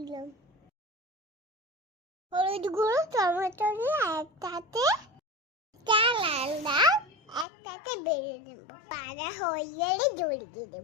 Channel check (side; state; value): right; drops out; at 7.5 s